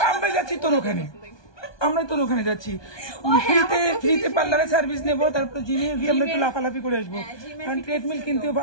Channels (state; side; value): late; right; 1.2 ms